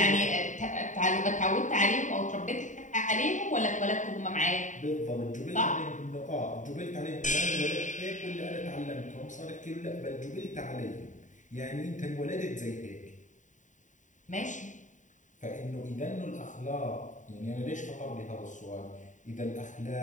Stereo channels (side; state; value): right; late; 0.36 ms